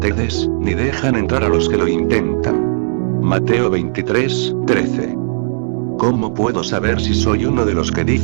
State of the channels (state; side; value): silent; left; digital silence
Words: ni dejan entrar a los que lo intentan. Mateo 23:13. ¿Cómo puedo saber si soy uno de los que